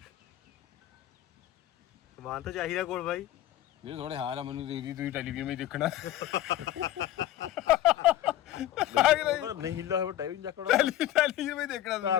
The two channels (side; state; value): right; quieter; 13.1 dB